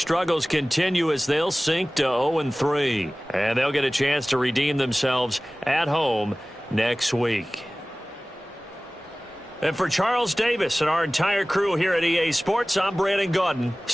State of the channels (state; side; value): normal; both; correlation 0.98